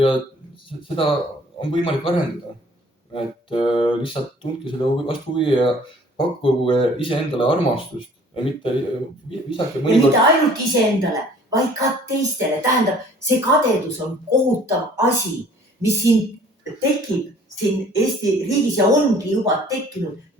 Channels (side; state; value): both; normal; correlation 0.54